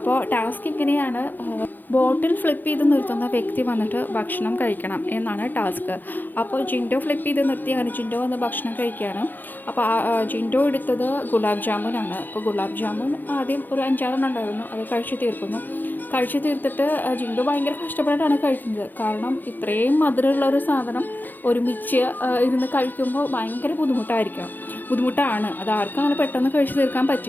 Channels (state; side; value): late; right; 0.088 ms